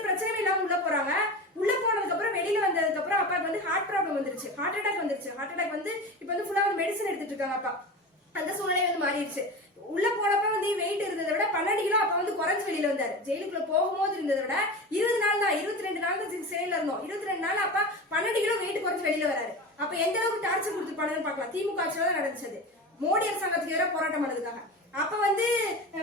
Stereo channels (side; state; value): both; normal; correlation 0.28